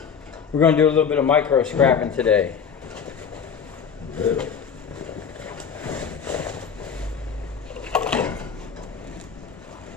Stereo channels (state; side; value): quieter; right; 6.9 dB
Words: We're going to do a little bit of micro scrapping today. Good.